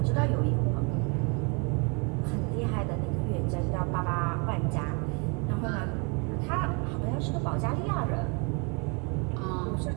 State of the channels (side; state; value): left; quieter; 33.6 dB